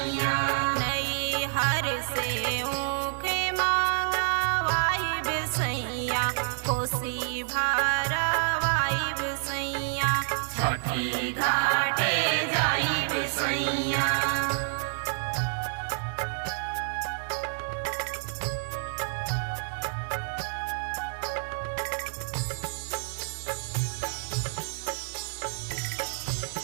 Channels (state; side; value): silent; left; digital silence